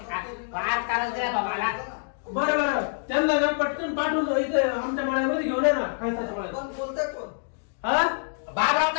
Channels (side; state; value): right; silent; digital silence